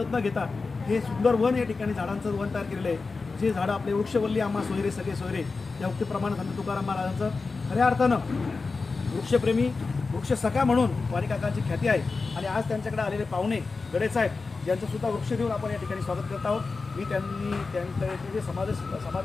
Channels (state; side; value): quieter; right; 4.2 dB